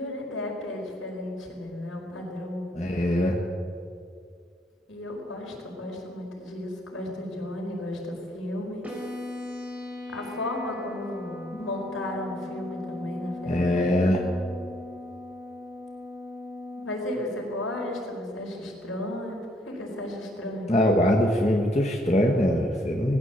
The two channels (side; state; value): both; normal; correlation 0.69